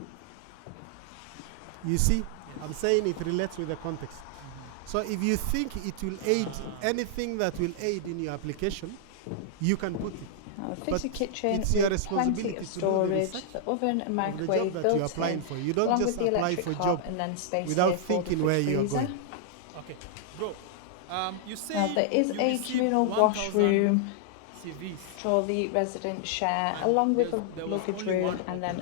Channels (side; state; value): both; different; correlation -0.01